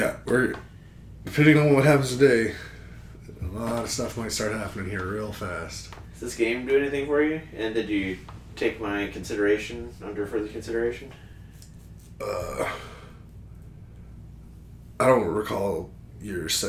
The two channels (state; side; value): identical; both; correlation 1.00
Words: we're depending on what happens today, a lot of stuff might start happening here real fast. Does this game do anything for you? And did you take my consideration under further consideration? I don't recall your